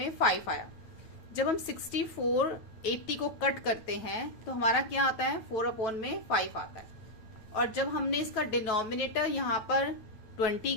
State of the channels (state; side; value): late; right; 9.2 ms